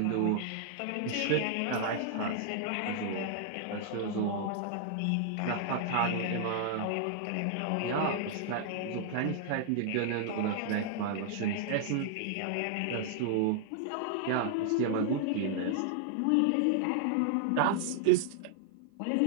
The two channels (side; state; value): both; different; correlation -0.01